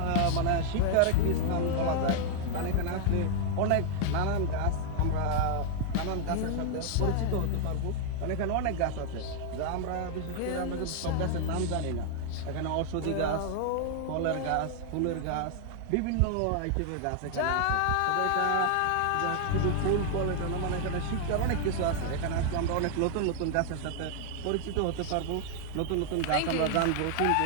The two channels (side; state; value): both; different; correlation 0.00